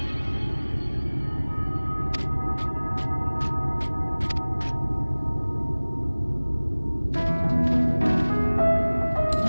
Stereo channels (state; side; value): inverted; both; correlation -1.00